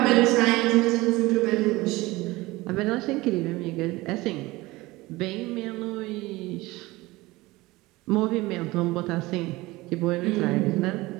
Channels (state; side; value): quieter; left; 20.5 dB